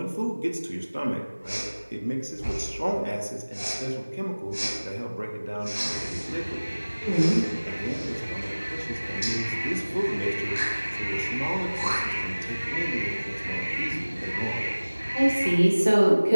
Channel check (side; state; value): both; inverted; correlation -1.00